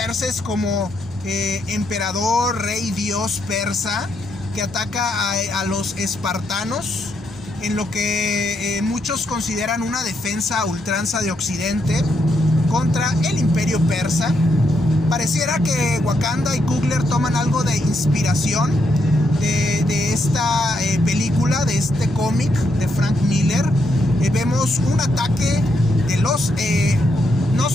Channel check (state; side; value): normal; both; correlation 0.79